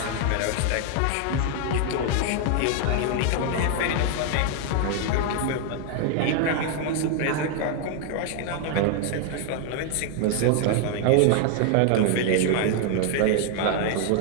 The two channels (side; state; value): both; different; correlation 0.00